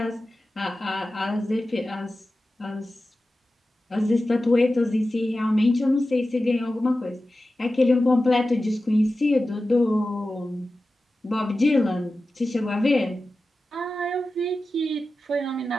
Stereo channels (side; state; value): both; normal; correlation 0.94